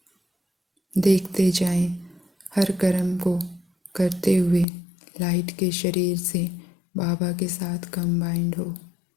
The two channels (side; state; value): right; drops out; at 4.7 s